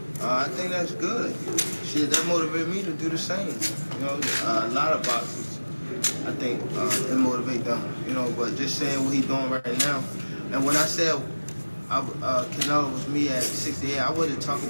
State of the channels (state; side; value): inverted; both; correlation -1.00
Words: I think that's good. Shit, that motivated me to do the same. A lot of boxers, I think, it motivate them. But just saying what he's doing right now. And when I said Canelo was me at 68, I wasn't talking